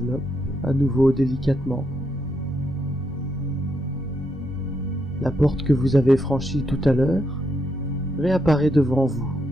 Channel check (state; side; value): normal; both; correlation 0.80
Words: à nouveau délicatement. La porte que vous avez franchie tout à l'heure réapparaît devant vous.